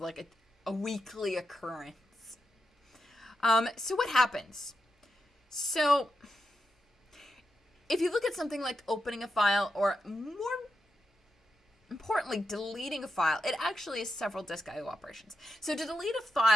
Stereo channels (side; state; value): both; normal; correlation 0.87